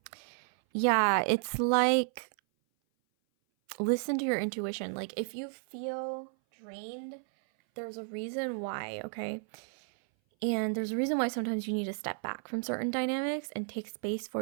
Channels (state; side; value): silent; left; 56 dB below the other